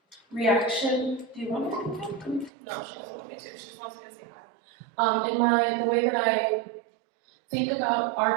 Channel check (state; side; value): drops out; left; at 2.5 s